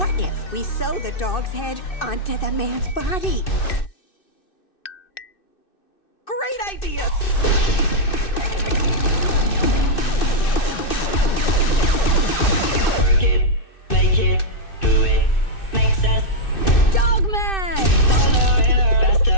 if we sew the dog's head onto the man's body? Great idea! Work it, make it, do it, makes sense. Dogman!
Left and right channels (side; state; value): right; late; 2.6 ms